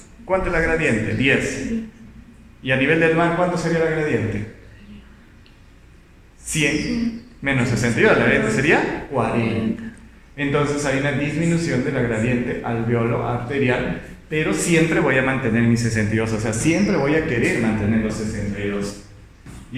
¿cuánto es la gradiente? 10. ¿Y a nivel del mar cuánto sería la gradiente? 100 menos 62, la gradiente sería 40. Entonces hay una disminución de la gradiente alveolo arterial, pero siempre voy a mantener mi 62, o sea, siempre voy a querer mantener los 62.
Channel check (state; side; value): identical; both; correlation 1.00